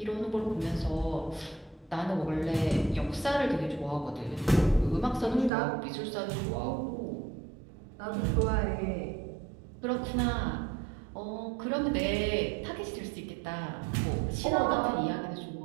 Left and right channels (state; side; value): drops out; left; at 5.5 s